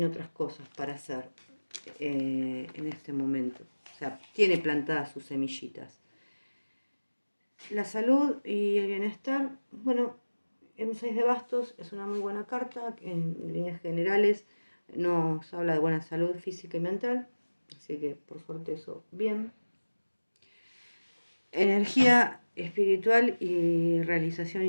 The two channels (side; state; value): both; inverted; correlation -1.00